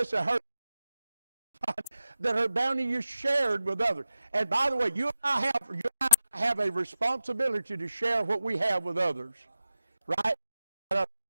that her bounty is shared with others. And by the way, you and I have a responsibility to share what we have with others. Right?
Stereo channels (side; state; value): both; inverted; correlation -0.89